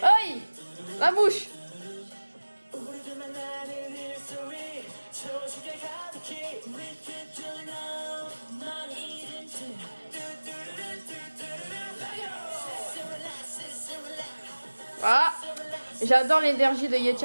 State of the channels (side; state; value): both; inverted; correlation -1.00